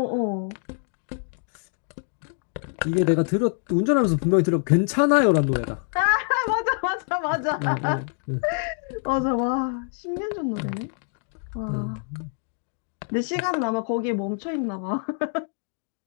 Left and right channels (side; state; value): right; silent; 56 dB below the other